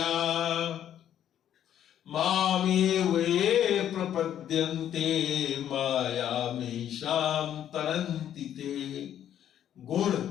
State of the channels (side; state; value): right; quieter; 10.5 dB